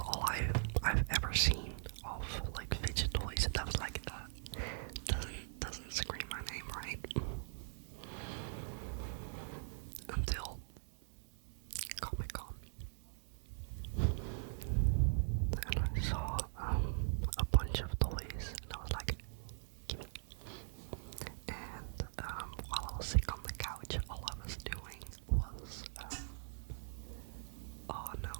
all I've ever seen of like fidget toys. That was like doesn't scream my name right until Comic-Con, and I saw a bunch of toys, and I was like, gimme. And while I was sick on the couch, all I was doing was oh no,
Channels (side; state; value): left; silent; 50 dB below the other